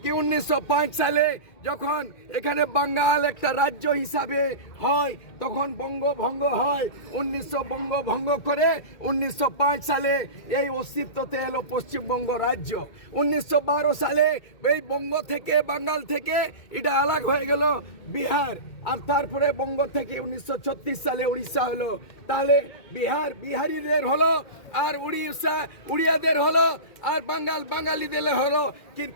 কি 1905 সালে যখন এখানে বাঙ্গাল একটা রাজ্য হিসাবে হয় তখন বঙ্গভঙ্গ হয়। 1900 বঙ্গভঙ্গ করে 1905 সালে এই অস্তিত্বতে এলো পশ্চিমবঙ্গ রাজ্য। 1912 সালে এই বঙ্গ থেকে বাঙ্গাল থেকে এটা আলাদা হয়ে গেল বিহার, আর তারপরে বঙ্গ থেকে 1936 সালে উড়িষ্যা হলো। তাহলে বিহারিদের হলো, আর উড়িয়াদের হলো, আর বাঙালিদের হলো।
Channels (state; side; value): late; right; 2.1 ms